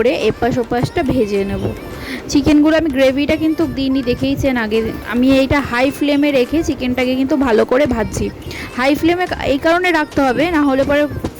এপাশ ওপাশটা ভেজে নেব। চিকেনগুলো আমি গ্রেভিটা কিন্তু দিইনি, দেখেইছেন আগে। আমি এইটা হাই ফ্লেমে রেখে চিকেনটাকে কিন্তু ভালো করে ভাজছি। হাই ফ্লেমে এই কারণে রাখতে হবে, না হলে পরে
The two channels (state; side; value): identical; both; correlation 1.00